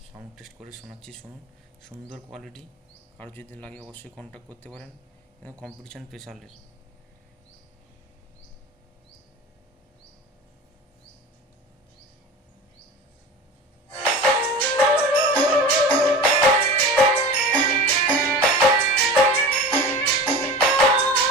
সাউন্ড টেস্ট করে শোনাচ্ছি, শুনুন। সুন্দর কোয়ালিটি। কারো যদি লাগে অবশ্যই কন্ট্যাক্ট করতে পারেন। কম্পিটিশন প্রেসারের।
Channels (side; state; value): both; normal; correlation 0.34